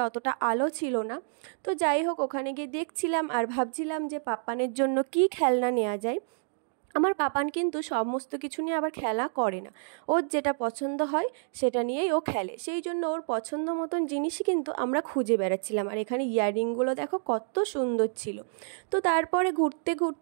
অতটা আলো ছিল না। তো যাই হোক, ওখানে গিয়ে দেখছিলাম আর ভাবছিলাম যে পাপ্পানের জন্য কি খেলনা নেওয়া যায়। আমার পাপান কিন্তু সমস্ত কিছু নিয়ে আবার খেলা করে না, ওর যেটা পছন্দ হয় সেটা নিয়েই ও খেলে। সেই জন্য ওর পছন্দ মতন জিনিসই কিন্তু আমরা খুঁজে বেড়াচ্ছিলাম। আর এখানে ইয়াররিংগুলো দেখো কত সুন্দর ছিল। তো তারপরে ঘুরতে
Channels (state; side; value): silent; left; digital silence